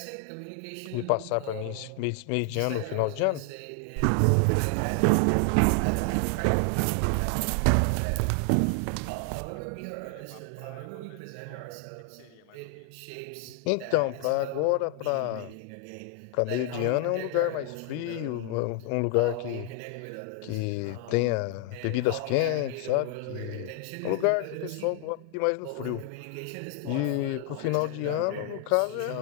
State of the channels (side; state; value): both; different; correlation 0.00